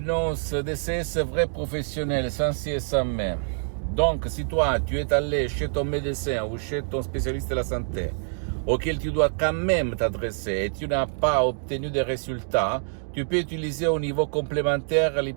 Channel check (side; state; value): left; silent; digital silence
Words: DCS vrai professionnel, sans si et sans mais. Donc, si toi, tu es allé chez ton médecin ou chez ton spécialiste de la santé, auquel tu dois quand même t'adresser et tu n'as pas obtenu de résultats, tu peux utiliser au niveau complémentaire